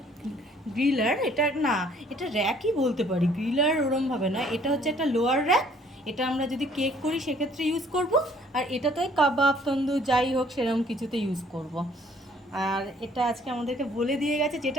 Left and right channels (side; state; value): both; normal; correlation 0.59